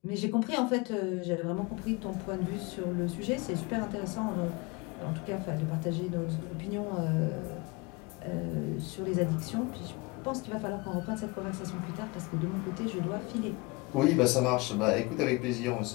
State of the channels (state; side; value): quieter; right; 25.3 dB